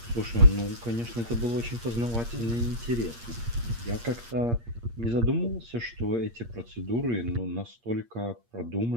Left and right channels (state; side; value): late; left; 8.6 ms